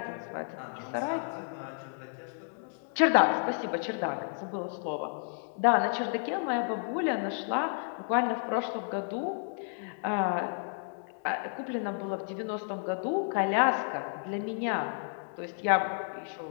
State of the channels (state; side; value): silent; right; 57 dB below the other